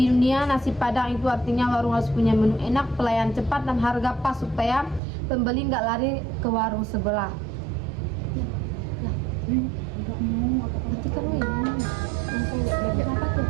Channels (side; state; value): left; drops out; at 5.0 s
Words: nasi padang itu artinya warung harus punya menu enak, pelayan cepat, dan harga pas supaya pembeli nggak lari ke warung sebelah. Nanti kan langsung lihat apa tuh?